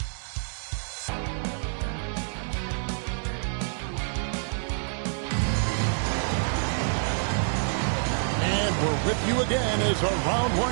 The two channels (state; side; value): silent; left; digital silence